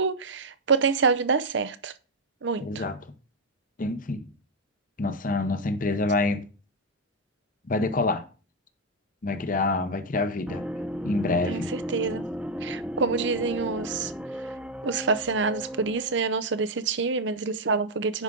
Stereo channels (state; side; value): normal; both; correlation 0.02